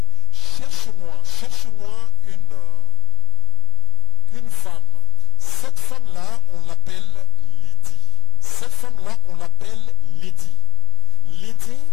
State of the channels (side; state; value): right; quieter; 14.1 dB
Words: cherche-moi une femme. Cette femme-là, on l'appelle Lydie. Cette femme-là, on l'appelle Lydie. Lydie,